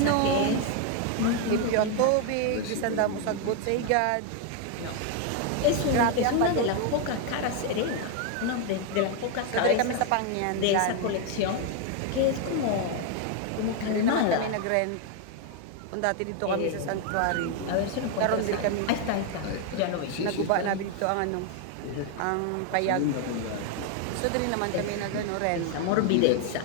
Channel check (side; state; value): both; different; correlation 0.01